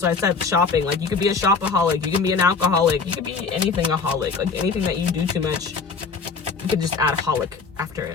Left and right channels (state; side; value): quieter; right; 4.8 dB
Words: why I said shopping. Like, you could be a shopaholic, you can be an alcoholic, you could be anything aholic. Like, anything that you do too much, you could just add holic after